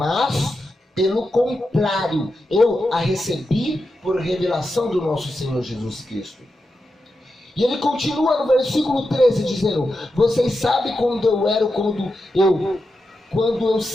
pelo contrário, eu a recebi por revelação do nosso Senhor Jesus Cristo. E ele continua no versículo 13 dizendo: vocês sabem quando eu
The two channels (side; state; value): both; normal; correlation 0.88